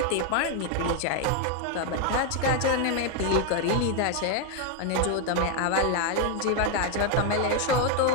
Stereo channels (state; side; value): different; both; correlation 0.01